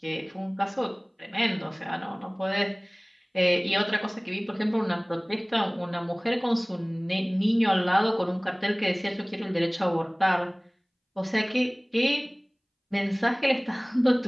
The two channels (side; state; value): both; identical; correlation 1.00